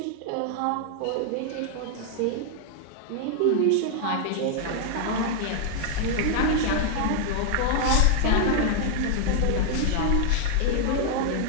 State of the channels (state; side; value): different; both; correlation 0.00